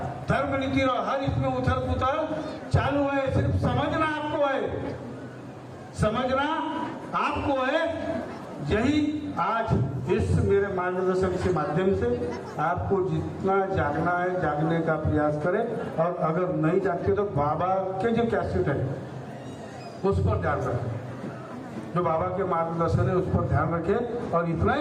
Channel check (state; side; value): identical; both; correlation 1.00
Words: धर्म नीति रहो, हर इसमें उथल पुथल चालू है। सिर्फ समझना आपको है, समझना आपको है। यही आज इस मेरे मार्गदर्शन के माध्यम से आपको जितना जागना है जागने का प्रयास करें, और अगर नहीं जागते तो बाबा के जो कैसेट है उस पर ध्यान रखें, जो बाबा के मार्गदर्शन है उस पर ध्यान रखें। और इतना